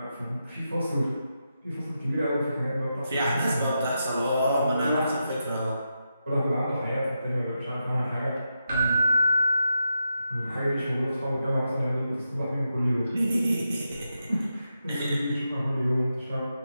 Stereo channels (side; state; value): both; inverted; correlation -0.87